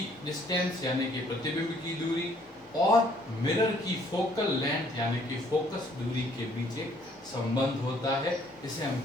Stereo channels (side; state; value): both; normal; correlation 0.63